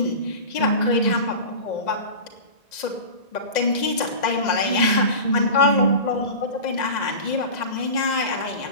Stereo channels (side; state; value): right; late; 2.0 ms